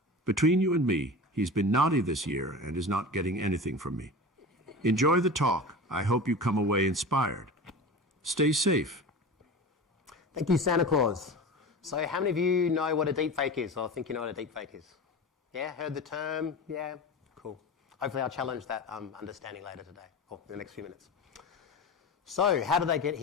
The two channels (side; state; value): both; normal; correlation 0.31